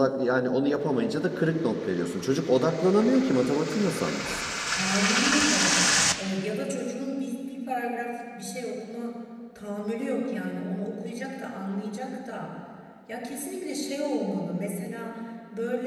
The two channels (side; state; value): both; identical; correlation 1.00